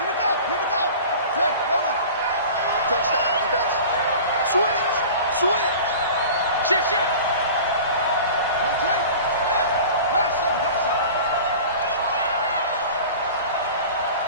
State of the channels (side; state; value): both; inverted; correlation -0.39